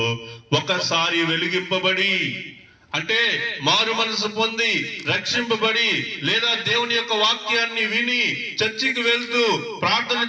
ఒకసారి వెలిగింపబడి అంటే మారు మనసు పొంది రక్షింపబడి లేదా దేవుని యొక్క వాక్యాన్ని విని చర్చికి వెళ్తూ ప్రార్థన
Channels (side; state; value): both; identical; correlation 1.00